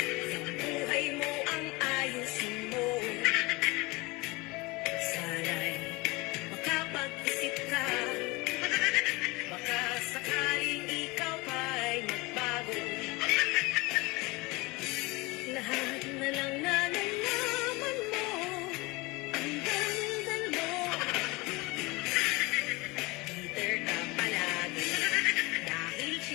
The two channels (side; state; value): right; quieter; 24.2 dB